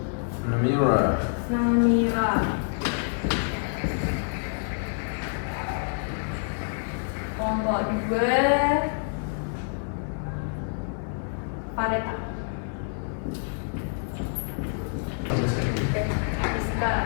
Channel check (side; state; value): right; silent; 60 dB below the other